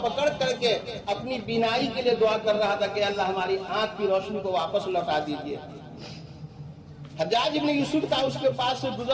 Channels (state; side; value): identical; both; correlation 1.00